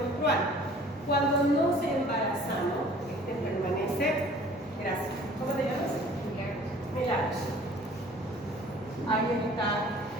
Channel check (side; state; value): both; normal; correlation 0.50